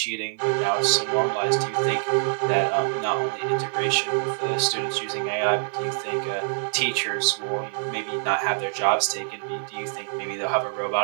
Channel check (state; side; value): silent; left; 58 dB below the other